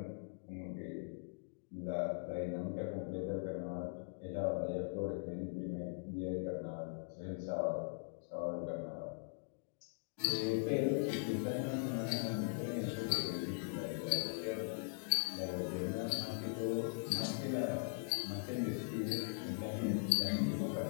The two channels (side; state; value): right; silent; digital silence